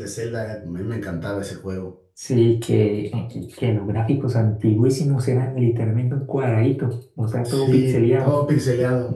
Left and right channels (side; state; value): both; identical; correlation 1.00